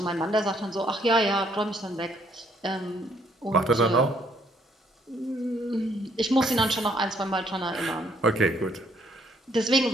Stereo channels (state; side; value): normal; both; correlation 0.67